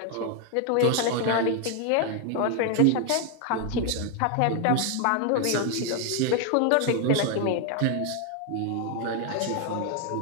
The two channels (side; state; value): both; different; correlation 0.00